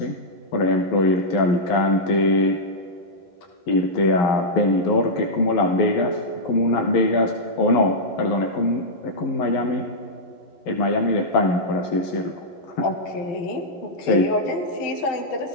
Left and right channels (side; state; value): right; late; 11 ms